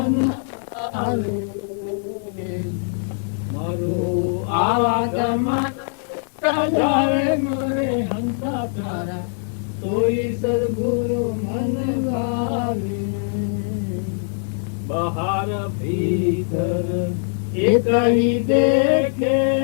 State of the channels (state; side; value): silent; right; digital silence